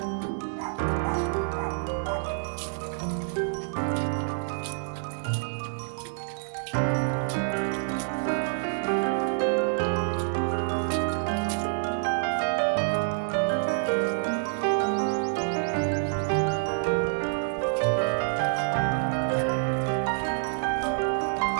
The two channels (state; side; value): silent; left; digital silence